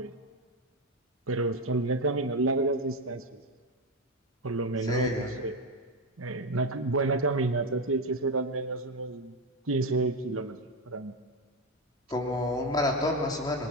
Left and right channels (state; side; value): normal; both; correlation 0.11